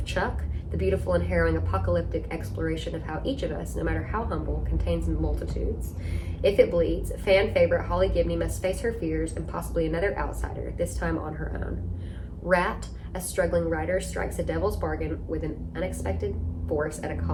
Chuck, the beautiful and harrowing apocalyptic exploration of how each of us, no matter how humble, contains multitudes. If It Bleeds, fan favorite Holly Gibney must face her fears and possibly another outsider, this time on her own. Rat, a struggling writer strikes a devil's bargain with an unexpected force at a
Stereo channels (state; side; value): identical; both; correlation 1.00